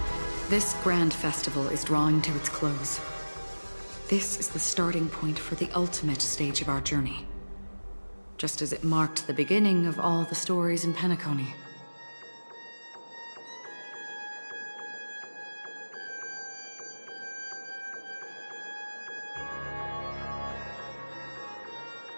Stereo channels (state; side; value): inverted; both; correlation -1.00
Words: This grand festival is drawing to its close. This is the starting point for the ultimate stage of our journey. Just as it marked the beginning of all the stories in Penacony.